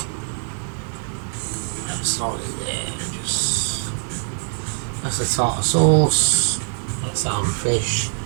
That's slightly there. Just. That's the tartar sauce. That's the other fish.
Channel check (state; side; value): silent; left; digital silence